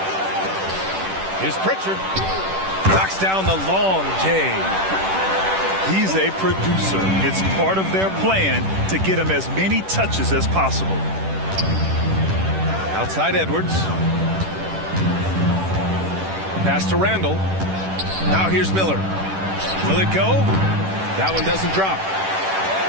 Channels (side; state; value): left; late; 10 ms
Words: Here's Pritchard. Knocks down the long J. He's a producer. It's part of their plan to get him as many touches as possible. Outside Edwards. Pass to Randall. Now here's Miller. Will it go? That one doesn't drop.